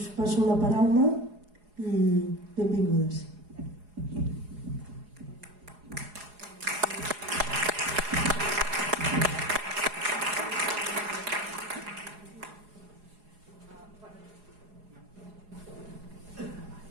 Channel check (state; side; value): late; left; 4.8 ms